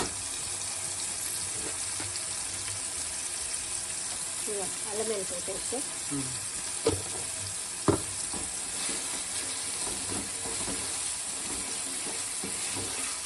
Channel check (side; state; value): both; identical; correlation 1.00